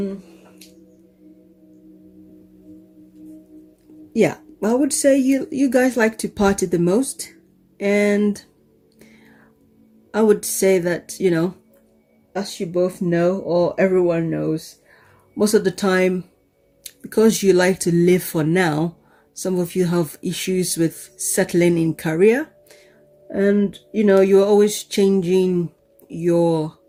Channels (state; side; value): identical; both; correlation 1.00